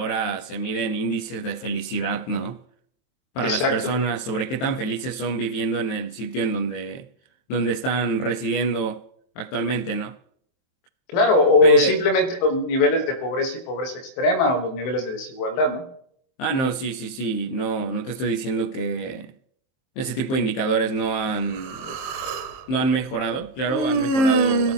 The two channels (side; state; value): right; late; 23 ms